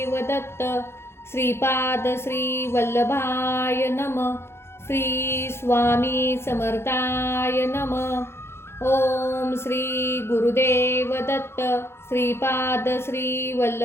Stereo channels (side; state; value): right; late; 0.12 ms